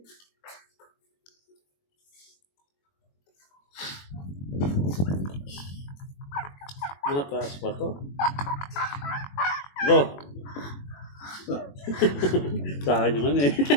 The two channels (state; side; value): late; right; 21 ms